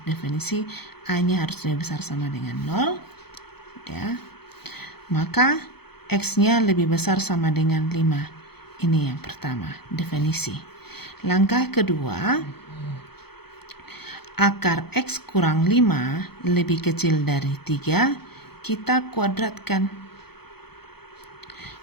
definisi, A-nya harus lebih besar sama dengan 0. Ya. Maka X-nya lebih besar sama dengan 5. Ini yang pertama, definisi. Langkah kedua, akar X kurang 5 lebih kecil dari 3. kita kuadratkan.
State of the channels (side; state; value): right; late; 0.97 ms